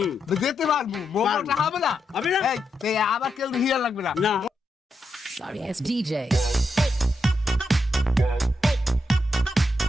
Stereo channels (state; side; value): normal; both; correlation 0.83